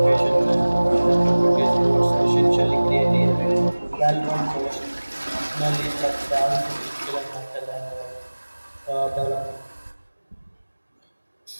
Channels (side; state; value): both; inverted; correlation -1.00